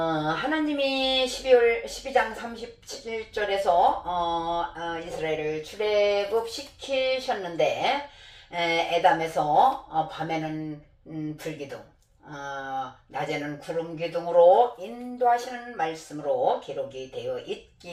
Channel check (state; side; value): identical; both; correlation 1.00